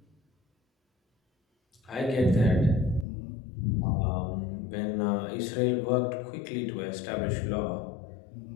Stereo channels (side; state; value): right; drops out; at 3.1 s